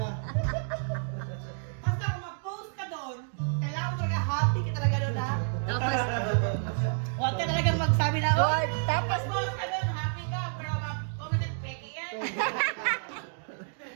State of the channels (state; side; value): silent; left; digital silence